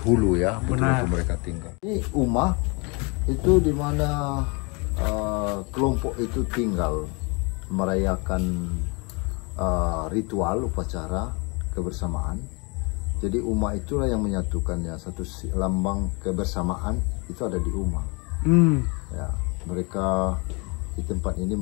ya, betul-betul mereka tinggal. Ini rumah itu di mana kelompok itu tinggal merayakan ritual upacara kebersamaan. Jadi rumah itulah yang menyatukannya, satu lambang kebersamaan itu ada di rumah. Ya, mereka di tempat ini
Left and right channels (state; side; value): quieter; right; 30.8 dB